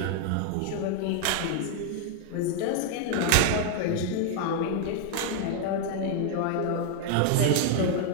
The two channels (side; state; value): both; different; correlation 0.00